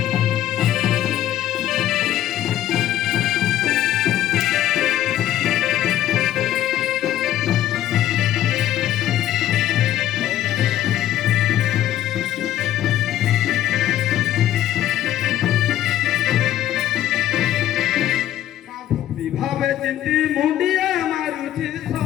ভাবে চিন্তি মুন্ডিয়া মারুছি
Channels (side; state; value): right; quieter; 12.4 dB